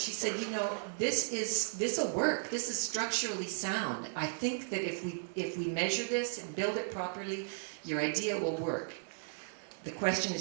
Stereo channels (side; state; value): left; silent; 54 dB below the other